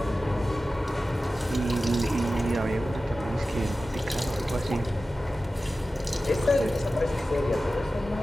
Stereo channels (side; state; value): both; normal; correlation 0.95